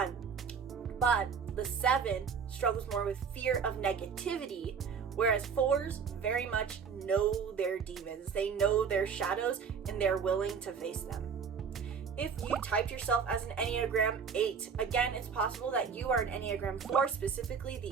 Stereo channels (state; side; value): quieter; left; 6.3 dB